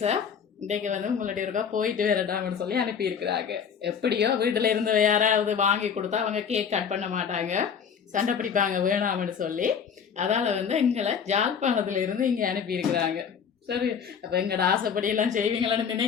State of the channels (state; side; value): quieter; right; 7.1 dB